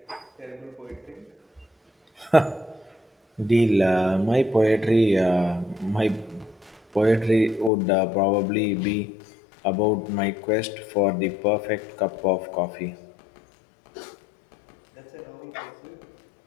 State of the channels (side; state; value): right; drops out; at 7.7 s